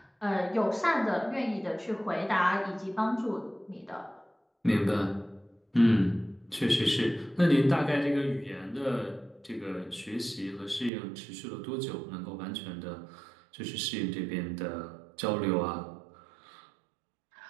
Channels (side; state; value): left; drops out; at 10.9 s